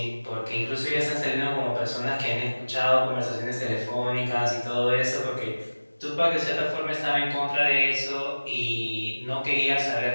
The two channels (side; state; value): both; inverted; correlation -1.00